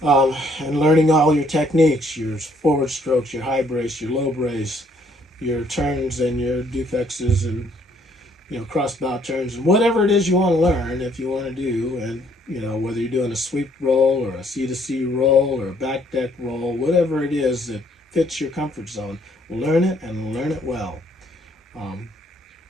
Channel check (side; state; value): both; normal; correlation 0.66